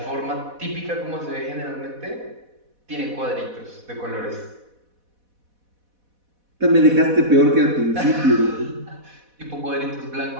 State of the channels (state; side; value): late; left; 4.1 ms